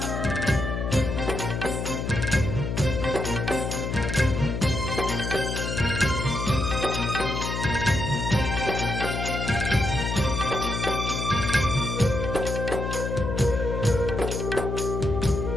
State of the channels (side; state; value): left; noise; hum, 3 dB below the sound